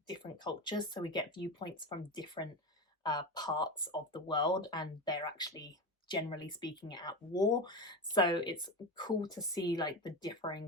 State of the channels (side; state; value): both; normal; correlation 0.20